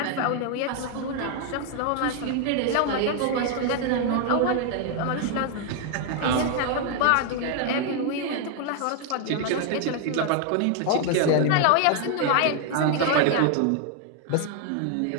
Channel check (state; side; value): different; both; correlation 0.00